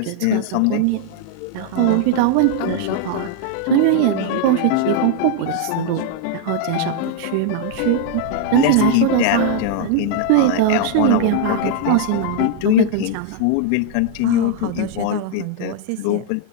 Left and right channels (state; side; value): different; both; correlation 0.00